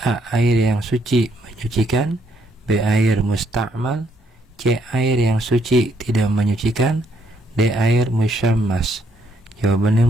A. Air yang suci menyucikan, B. Air musta'mal, C. Air yang suci tidak menyucikan, D. Air musyammas. Jawaban yang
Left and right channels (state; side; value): normal; both; correlation 0.72